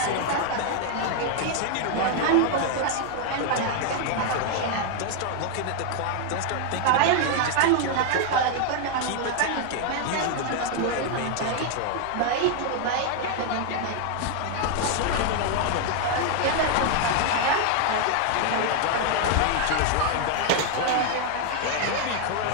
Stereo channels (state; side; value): different; both; correlation 0.00